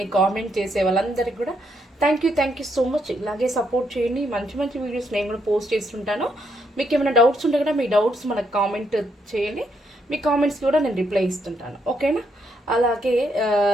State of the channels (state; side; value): normal; both; correlation 0.76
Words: కామెంట్ చేసే వాళ్ళందరికీ కూడా థ్యాంక్ యూ సో మచ్. ఇలాగే సపోర్ట్ చేయండి. మంచి మంచి వీడియోస్ నేను కూడా పోస్ట్ చేస్తుంటాను. మీకు ఏమైనా డౌట్స్ ఉంటే కూడా మీ డౌట్స్ మనకు కామెంట్ చేయండి. మీ కామెంట్స్ కూడా నేను రిప్లై ఇస్తుంటాను, ఓకేనా? అలాగే